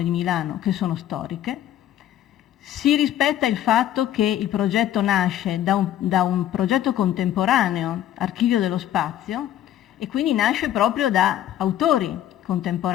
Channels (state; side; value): quieter; right; 11.9 dB